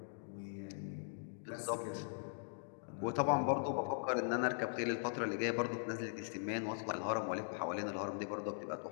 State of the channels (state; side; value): silent; right; digital silence